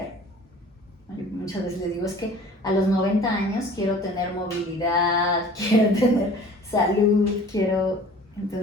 Yo muchas veces les digo, es que a los 90 años quiero tener movilidad, quiero tener salud,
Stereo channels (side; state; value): both; normal; correlation 0.46